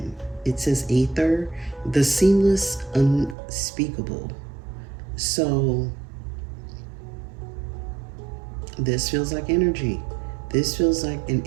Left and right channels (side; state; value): left; drops out; at 3.4 s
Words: It says Aether, the seamless, unspeakable. So this feels like energy. This feels like an